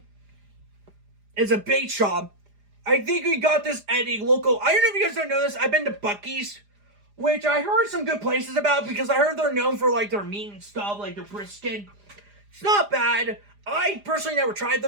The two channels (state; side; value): late; left; 4.9 ms